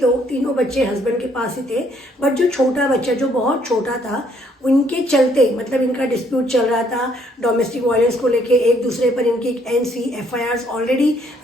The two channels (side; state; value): both; normal; correlation 0.67